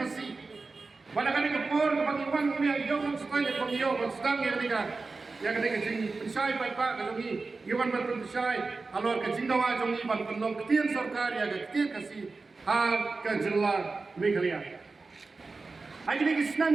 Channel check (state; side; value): quieter; left; 3.9 dB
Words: pada kali kepor kami wan ni jom setai kami yo sedang ya ketika jing pensai pai pak kalau ni iwan ban pensai alor ke jing dawa jom ni ban penlong ketien sarkar ya ketien kasih ha ke jela Meghalaya ai kini